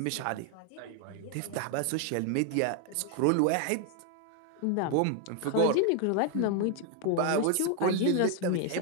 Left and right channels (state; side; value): different; both; correlation 0.01